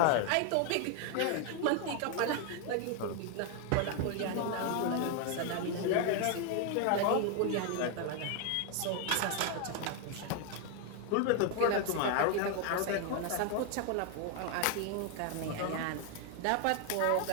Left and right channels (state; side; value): different; both; correlation 0.01